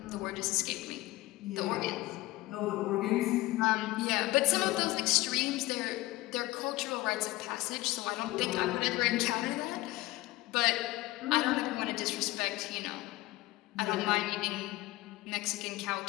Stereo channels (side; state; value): right; quieter; 18.9 dB